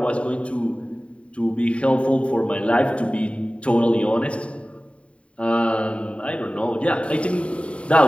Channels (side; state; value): right; late; 0.062 ms